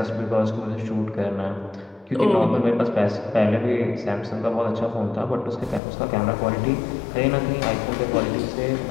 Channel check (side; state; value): right; drops out; at 5.8 s